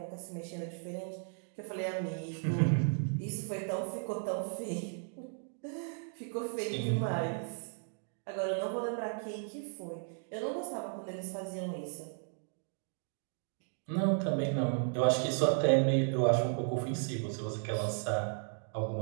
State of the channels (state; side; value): silent; left; 54 dB below the other